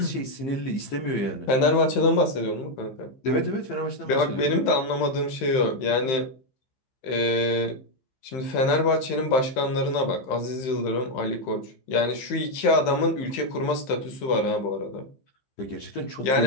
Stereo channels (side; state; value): right; late; 15 ms